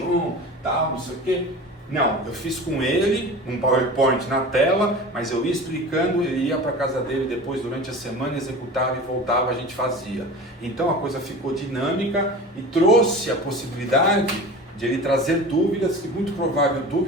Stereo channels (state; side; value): normal; both; correlation 0.35